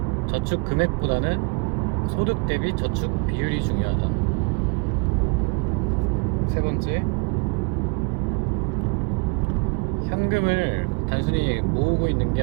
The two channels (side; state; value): left; quieter; 33.1 dB